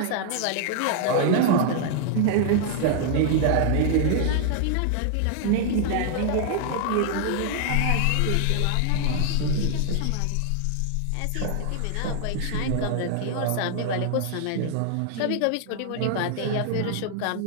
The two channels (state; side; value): different; both; correlation 0.00